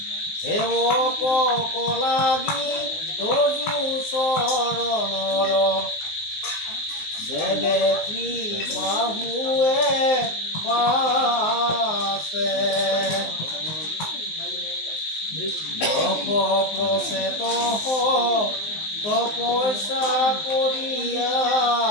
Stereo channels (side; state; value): right; late; 19 ms